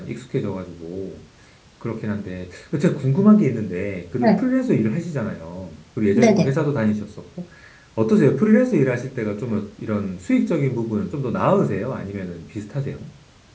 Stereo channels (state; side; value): identical; both; correlation 1.00